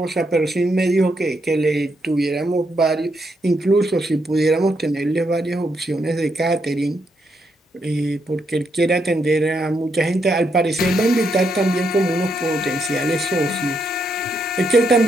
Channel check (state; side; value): normal; both; correlation 0.78